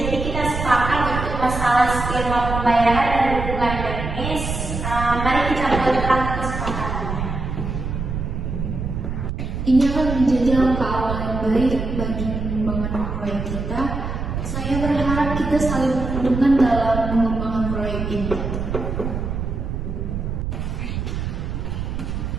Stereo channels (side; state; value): right; noise; rumble, 4 dB below the sound